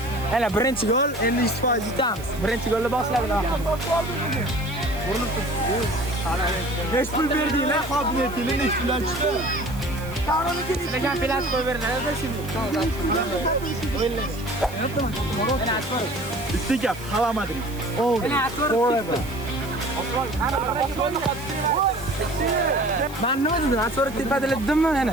Hala birinchi gol, endi 100% yutamiz. Birinchi golni boshladik. Urinib turibdi. Hech pul berdinglar, qobiliyatingni hech bilan chiqdi. Sizlarga penalti qo'yib berdilar-da shuni. Bitta gap, xalamading. Forever. Ben ne dedim? Ben sonra tepede dedim mi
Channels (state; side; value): noise; right; hiss, 18 dB below the sound